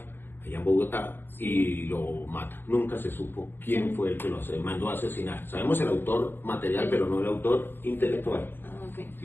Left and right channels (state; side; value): late; right; 0.099 ms